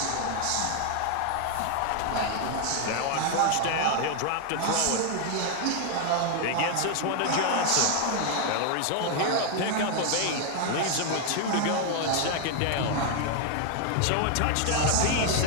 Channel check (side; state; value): both; different; correlation 0.00